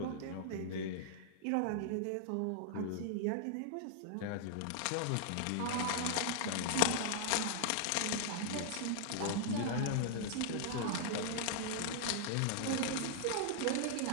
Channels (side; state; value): both; different; correlation -0.01